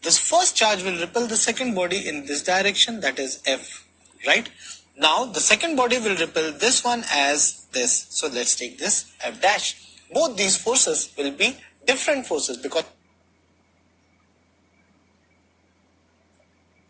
This first charge will repel the second body in this direction, that is F, right? Now the second body will repel this one as this. So let's take this F dash. Both these forces will be different forces because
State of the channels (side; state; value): both; identical; correlation 1.00